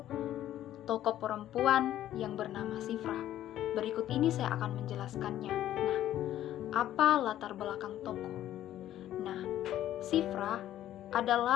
tokoh perempuan yang bernama Sifra. Berikut ini saya akan menjelaskannya. Nah, apa latar belakang tokoh? Nah, Sifra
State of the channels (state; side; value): quieter; right; 12.6 dB